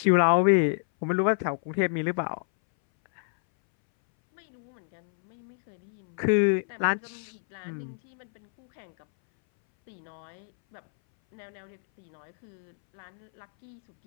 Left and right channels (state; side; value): silent; right; 59 dB below the other